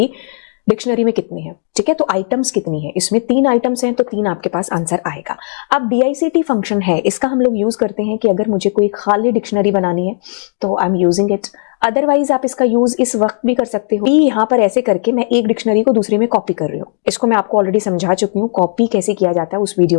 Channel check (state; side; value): silent; right; digital silence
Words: डिक्शनरी में कितने हैं। ठीक है, तो आइटम्स कितनी है, इसमें 3 आइटम्स हैं तो 3 आपके पास आंसर आएगा। अब DICT फंक्शन है, इसका हम लोग यूज करते हैं कि अगर मुझे कोई खाली डिक्शनरी बनानी है तो I am using it. Otherwise आप इसका यूज इस वक्त भी कर सकते हो। यहाँ पर ऐसे करके मैं एक डिक्शनरी को दूसरे में कॉपी कर रही हूँ। इसको मैं आपको ऑलरेडी समझा चुकी हूँ कॉपी कैसे किया जाता है उस